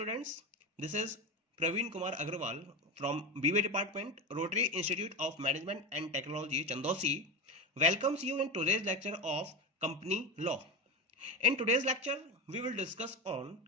this is Praveen Kumar Agrawal from BA Department, Rotary Institute of Management and Technology, Chandosi, welcomes you in today's lecture of Company Law. In today's lecture, we will discuss on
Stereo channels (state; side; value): normal; both; correlation 0.20